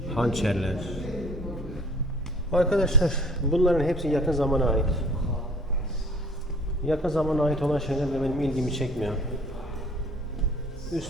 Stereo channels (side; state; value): both; normal; correlation 0.52